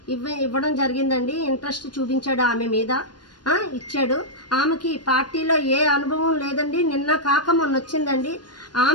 ఇవ్వడం జరిగిందండి. ఇంట్రెస్ట్ చూపించాడు ఆమె మీద, ఇచ్చాడు. ఆమెకి పార్టీలో ఏ అనుభవం లేదండి. నిన్న కాక మొన్న వచ్చిందండి.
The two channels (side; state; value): right; late; 0.70 ms